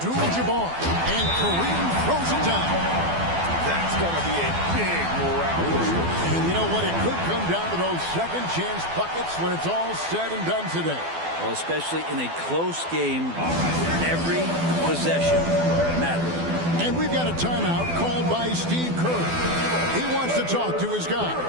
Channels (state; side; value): late; left; 12 ms